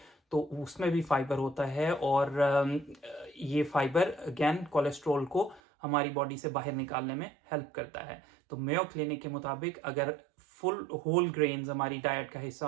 तो उसमें भी फाइबर होता है और ये फाइबर अगेन कोलेस्ट्रॉल को हमारी बॉडी से बाहर निकालने में हेल्प करता है। तो मेयो क्लिनिक के मुताबिक अगर फुल होल ग्रेन्स हमारी डाइट का हिस्सा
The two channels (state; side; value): drops out; left; at 5.6 s